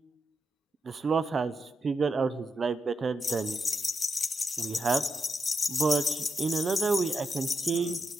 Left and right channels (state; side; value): normal; both; correlation 0.85